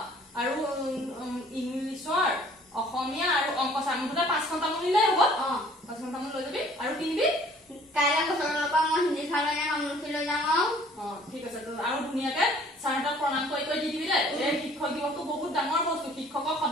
আৰু ইংলিছৰ অসমীয়া আৰু অংক ছাৰ মুঠতে 5খন তামোল নিলেই হ'ব 5খন তামোল লৈ যাবি আৰু কিনিবি কাইলে বছৰৰ পৰা মই হিন্দী ছাৰলৈ তামোলখিনি লৈ যাম ঠিক আছে আৰু ধুনীয়াকে ছাৰহঁতক প্ৰণাম কৰি দি দিবি দেই এই শিক্ষক দিৱসটো বহুত ডাঙৰ বস্তু শিক্ষকক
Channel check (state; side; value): normal; both; correlation 0.55